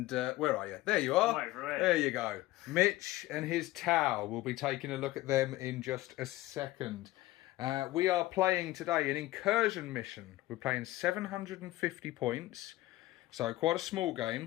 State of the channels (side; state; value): right; quieter; 17.4 dB